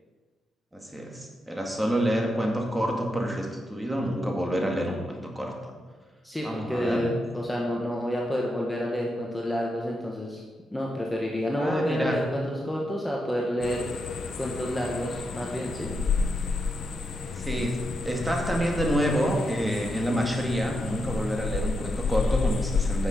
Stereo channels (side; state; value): both; normal; correlation 0.84